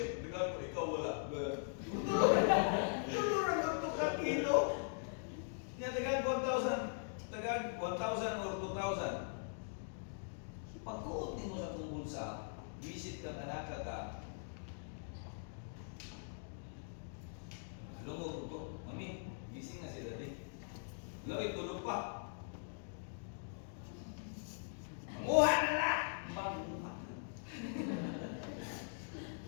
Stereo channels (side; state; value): right; silent; digital silence